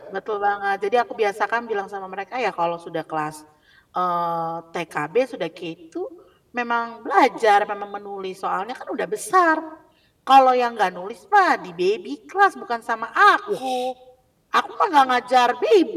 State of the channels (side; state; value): both; identical; correlation 1.00